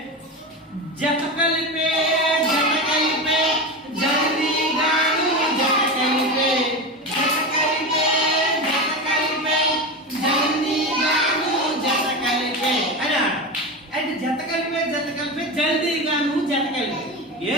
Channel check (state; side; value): normal; both; correlation 0.22